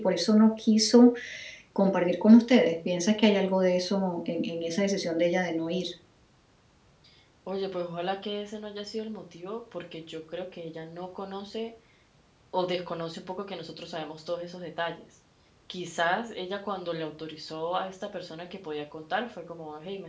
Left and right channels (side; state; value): both; identical; correlation 1.00